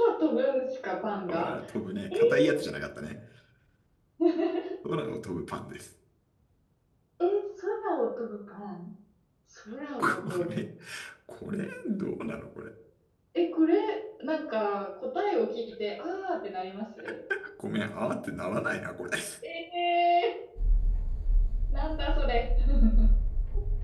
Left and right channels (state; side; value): identical; both; correlation 1.00